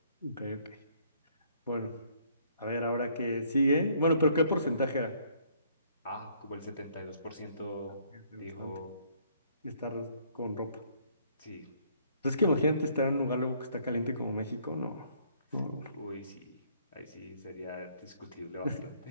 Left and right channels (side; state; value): both; inverted; correlation -0.64